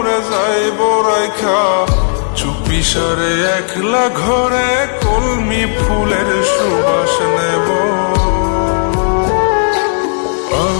যাই বরাইখা, চুপি সারে একলা ঘরে কলমি ফুলের সুবাস নেব।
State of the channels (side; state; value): right; silent; digital silence